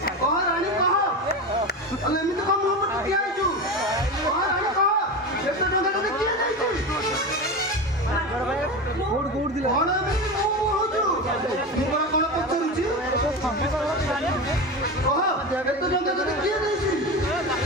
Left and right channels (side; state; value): both; normal; correlation 0.23